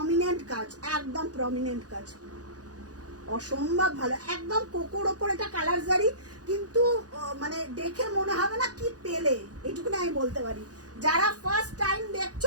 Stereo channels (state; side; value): late; left; 0.68 ms